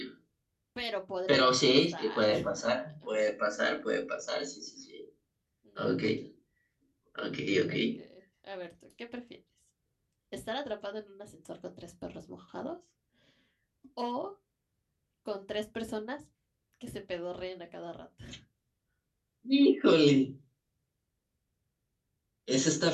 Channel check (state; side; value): identical; both; correlation 1.00